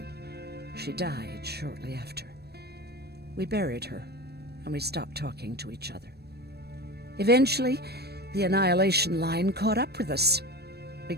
She died shortly after. We buried her, and we stopped talking to each other. Eventually, the Annihilation Line caught up with us. We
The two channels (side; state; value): left; late; 0.47 ms